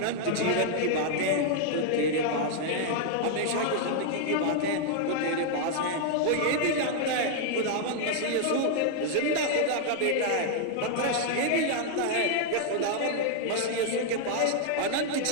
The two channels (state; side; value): different; both; correlation 0.00